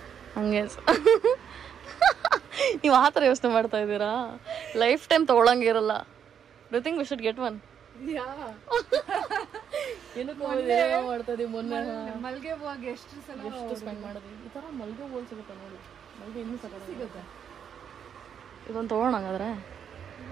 ಹಂಗೆ ನೀವು ಆ ಥರ ಯೋಚನೆ ಮಾಡ್ತಾ ಇದ್ದೀರಾ? ಲೈಫ್ ಟೈಮ್ ತೊಗೊಳಂಗಿರಲ್ಲ. Do think we should get one? ಏನೋ ಮಾಡ್ತಾ ಇದೀವಿ. ಮೊನ್ನೆ ಮಲ್ಗೆ ಹೂವಾಗಿ ಎಷ್ಟು ಸ್ಪೆಂಡ್ ಮಾಡಿದ್ವಿ. ಈ ಥರ ಮಲ್ಗೆ ಹೂವು ಸಿಗುತ್ತೆ ನೋಡಿ. ಮಲ್ಗೆ ಇನ್ನೂ ಸಿಗುತ್ತೆ. ಇದೊಂದು ತೊಗೊಳೋಣ ಹಾಗಾದ್ರೆ.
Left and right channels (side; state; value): left; quieter; 8.2 dB